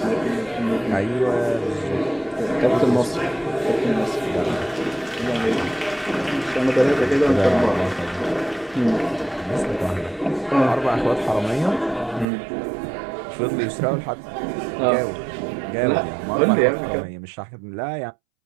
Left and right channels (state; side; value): drops out; left; at 12.2 s